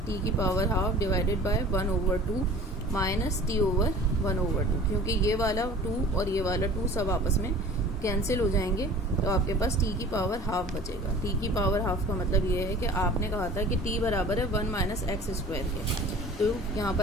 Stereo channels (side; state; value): both; normal; correlation 0.44